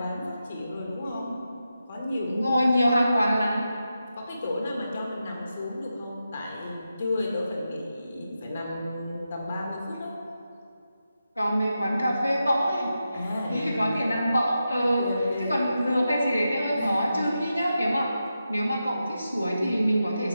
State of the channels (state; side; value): inverted; both; correlation -0.89